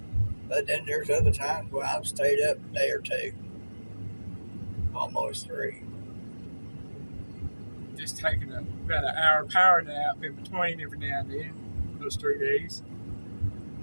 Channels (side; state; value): both; inverted; correlation -1.00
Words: but then there's other times where I've stayed up a day or two. Almost 3. Just taking about an hour power nap in between every now and then, those 3 days.